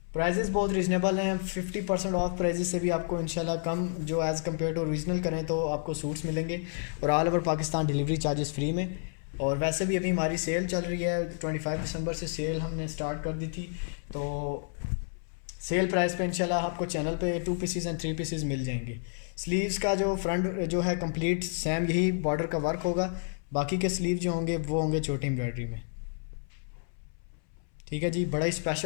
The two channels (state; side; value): silent; right; 58 dB below the other